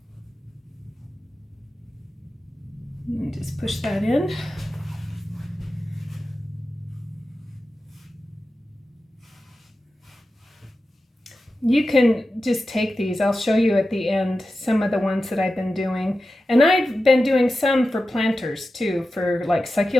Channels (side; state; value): both; normal; correlation 0.93